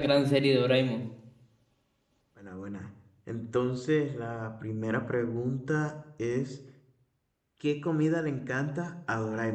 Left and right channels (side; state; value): both; identical; correlation 1.00